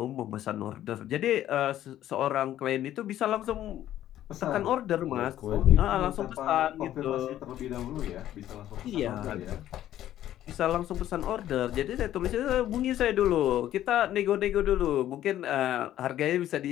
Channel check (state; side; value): quieter; right; 12.4 dB